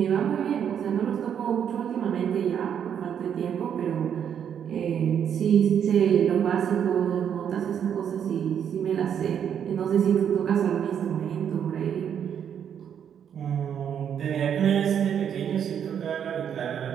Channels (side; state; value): left; quieter; 8.5 dB